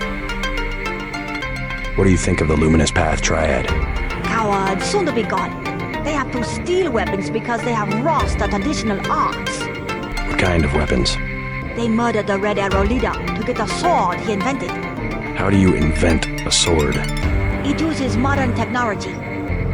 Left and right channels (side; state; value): both; identical; correlation 1.00